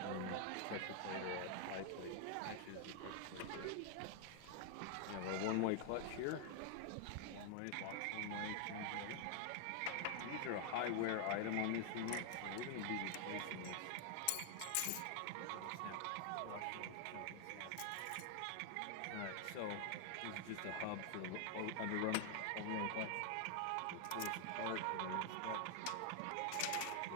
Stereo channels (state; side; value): different; both; correlation 0.00